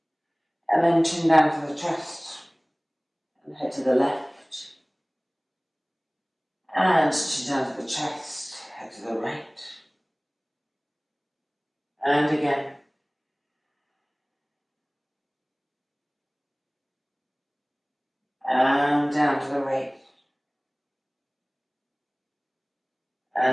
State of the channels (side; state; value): both; identical; correlation 1.00